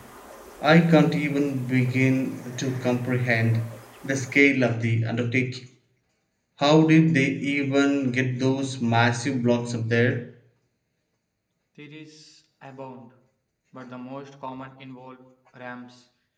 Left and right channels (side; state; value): both; identical; correlation 1.00